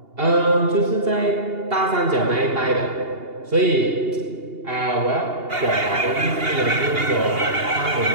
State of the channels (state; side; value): late; left; 2.8 ms